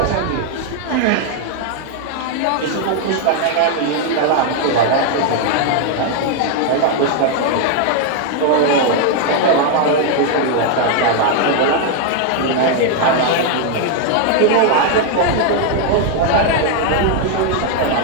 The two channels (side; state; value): both; different; correlation 0.00